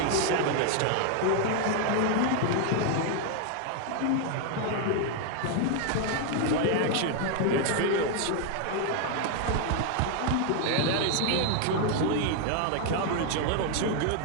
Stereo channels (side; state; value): both; different; correlation 0.00